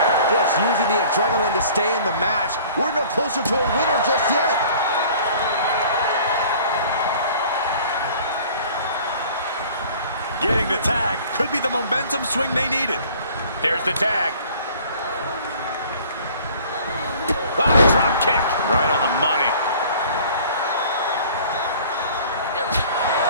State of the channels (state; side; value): inverted; both; correlation -0.50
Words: Just using the adrenaline to stay in the match. We're no closer to a winner just yet. Getting the tag could be the momentum swing they needed. There's the tag. Ah, drop kick. Right on the money.